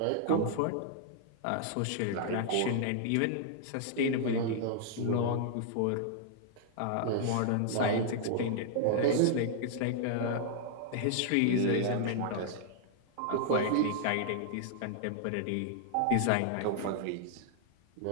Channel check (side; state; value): both; different; correlation -0.01